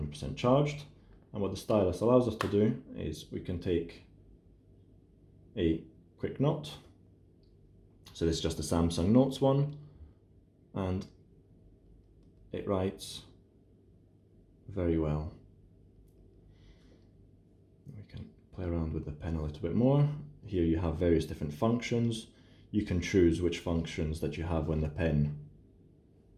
charged. And what the stylus allows us to do is we can take a quick note. So this is just a Samsung Notes one, and it writes very well. We can play around with the pen a little bit more. Here you have various different functions. You can choose which functions that you have when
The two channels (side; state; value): both; identical; correlation 1.00